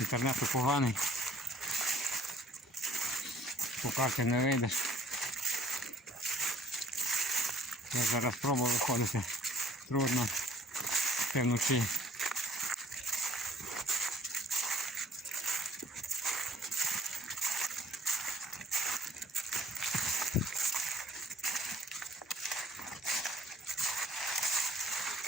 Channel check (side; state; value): both; normal; correlation 0.56